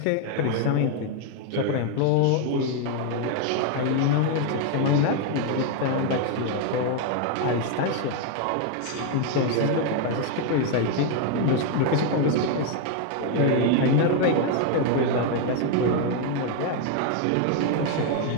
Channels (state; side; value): different; both; correlation 0.01